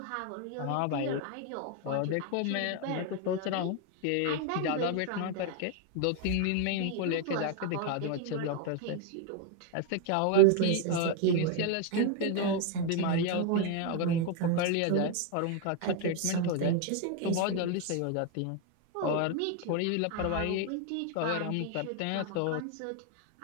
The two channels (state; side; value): different; both; correlation 0.01